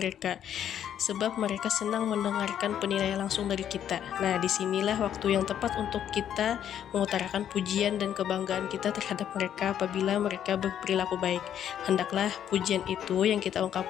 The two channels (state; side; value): quieter; right; 9.8 dB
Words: sebab mereka senang mendengarkan penilaian langsung dari kita. Nah, disinilah waktu yang tepat untuk kita mengutarakan pujian dan kebanggaan kita terhadap mereka apabila mereka berperilaku baik. Hendaklah pujian itu yang kita